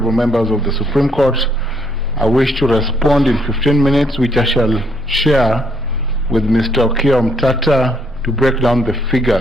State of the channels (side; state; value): both; normal; correlation 0.70